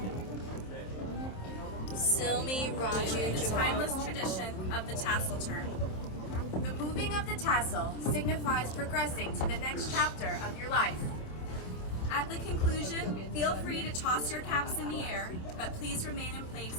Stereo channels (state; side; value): late; right; 27 ms